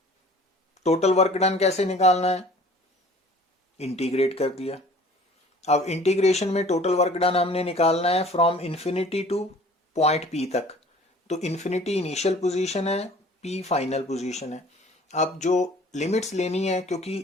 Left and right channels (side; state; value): both; normal; correlation 0.49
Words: टोटल वर्क डन कैसे निकालना है, इंटीग्रेट कर दिया। अब इंटीग्रेशन में टोटल वर्क डन हमने निकालना है from infinity to point P तक। तो इंफिनिटी इनिशियल पोजीशन है, पी फाइनल पोजीशन है। अब जो लिमिट्स लेनी है,